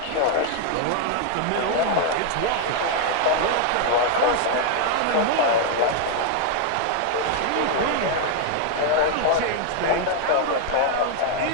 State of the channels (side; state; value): both; different; correlation 0.00